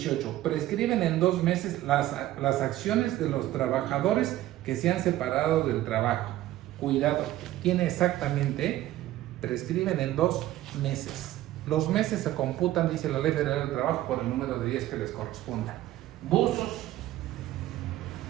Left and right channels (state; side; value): quieter; left; 14.8 dB